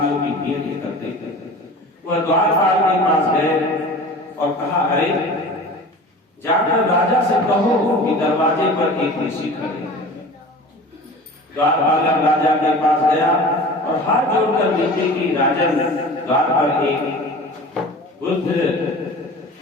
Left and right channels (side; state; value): both; normal; correlation 0.38